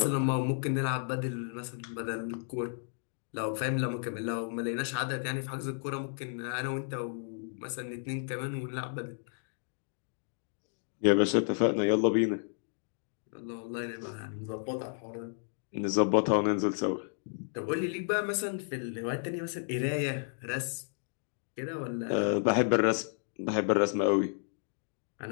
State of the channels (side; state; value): right; silent; digital silence